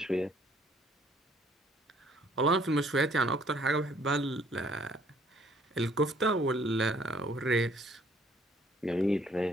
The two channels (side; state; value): both; normal; correlation 0.61